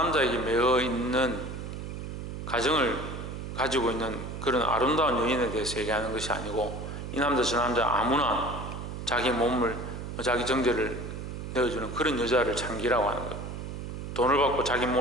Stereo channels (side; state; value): right; noise; hum, 7 dB below the sound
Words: 매어 있는 가정을 가지고 있는 그런 아름다운 여인에 대해서 얘기하는 것이 아니고, 이 남자 저 남자 아무나 자기 몸을, 자기 정제를 내어주는 그런 여자를 장기라고 하는 거예요. 돈을 받고 자기